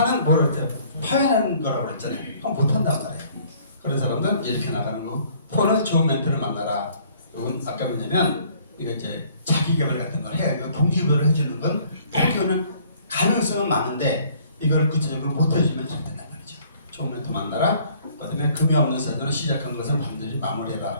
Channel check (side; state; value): both; inverted; correlation -0.58